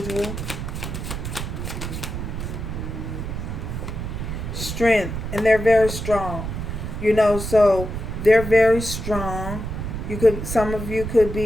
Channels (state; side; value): noise; right; rumble, 5 dB below the sound